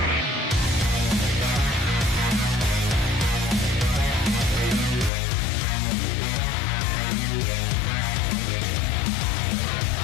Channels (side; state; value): right; drops out; at 5.1 s